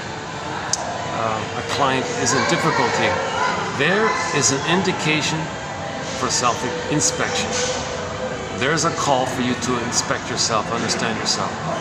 a client is in difficulty, there is an indication for self-inspection. There's a call for you to inspect yourself, understand yourself.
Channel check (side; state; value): both; identical; correlation 1.00